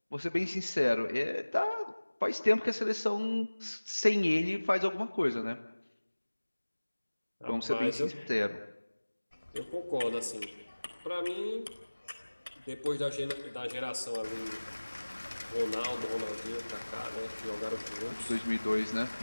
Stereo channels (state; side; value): inverted; both; correlation -1.00